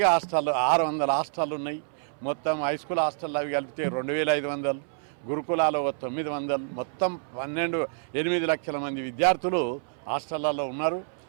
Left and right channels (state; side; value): silent; left; 60 dB below the other